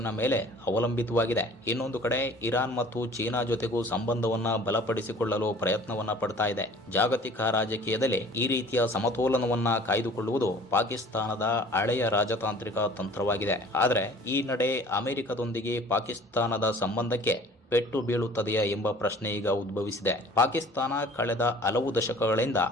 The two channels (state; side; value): normal; both; correlation 0.48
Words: ಮೇಲೆ ಅವಲಂಬಿತವಾಗಿದೆ. ಇನ್ನೊಂದು ಕಡೆ ಇರಾನ್ ಮತ್ತು ಚೀನಾ ಜೊತೆಗೂ ಸಂಬಂಧವನ್ನ ಬಲಪಡಿಸಿಕೊಳ್ಳಲು ಪ್ರಯತ್ನವನ್ನ ಪಡ್ತಾ ಇದೆ. ಜಾಗತಿಕ ರಾಜಕೀಯದಲ್ಲಿ ಈ ರೀತಿಯ ಸಮತೋಲನವನ್ನ ಕಾಯ್ದುಕೊಳ್ಳುವುದು ಪಾಕಿಸ್ತಾನದ ಹಳೆಯ ರಾಜತಾಂತ್ರಿಕ ತಂತ್ರವಾಗಿದೆ. ಆದರೆ ಈ ನಡೆ ಅಮೆರಿಕದೊಂದಿಗೆ ಪಾಕಿಸ್ತಾನದ ಸಂಬಂಧಕ್ಕೆ ಪೆಟ್ಟು ಬೀಳುತ್ತದೆಯಾ ಎಂಬ ಪ್ರಶ್ನೆ ಈಗ ಉದ್ಭವಿಸಿದೆ. ಪಾಕಿಸ್ತಾನ ಕಳೆದ ಹಲವು ದಶಕಗಳಿಂದ